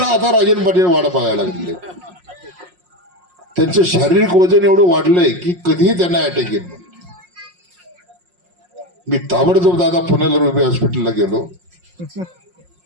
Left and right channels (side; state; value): left; late; 5.5 ms